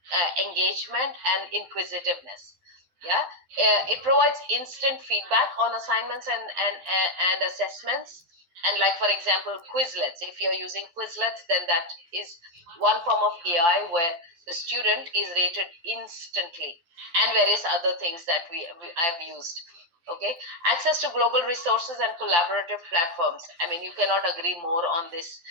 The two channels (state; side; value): late; left; 12 ms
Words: engagement, and inquisitiveness. Yeah, it provides instant feedback on assignments and assessments. And, like, for example, Quizlets. If you're using Quizlets, then that is one form of AI where the student is rated instantly, and various other things that I've used. Okay, access to global resources and collaborative platforms. I mean, you cannot agree more on this.